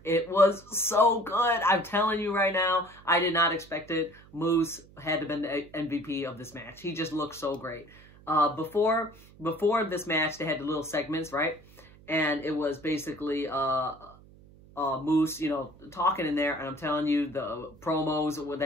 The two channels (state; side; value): noise; right; hum, 24 dB below the sound